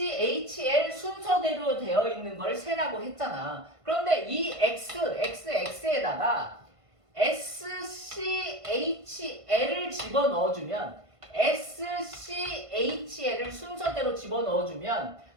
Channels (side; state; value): left; late; 1.5 ms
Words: 순서대로 되어 있는 걸 세라고 했잖아. 그런데 이 XXX에다가 SCHL을 집어넣어주면 SCHL을 순서대로 집어넣어주면